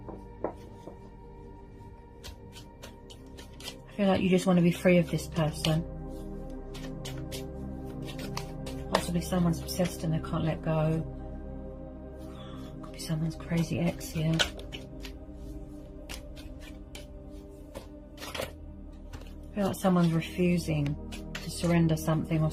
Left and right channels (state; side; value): identical; both; correlation 1.00